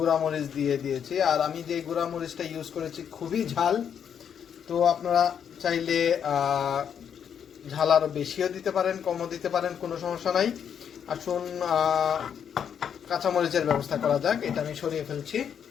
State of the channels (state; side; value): quieter; right; 8.1 dB